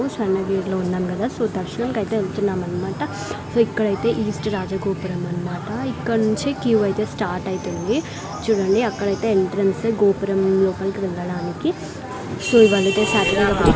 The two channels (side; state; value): both; identical; correlation 1.00